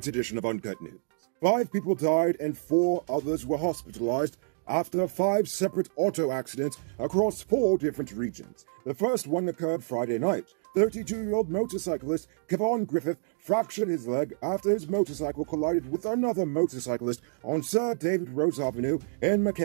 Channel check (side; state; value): left; silent; digital silence